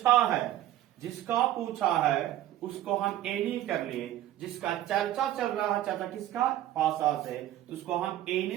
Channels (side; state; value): left; quieter; 13.2 dB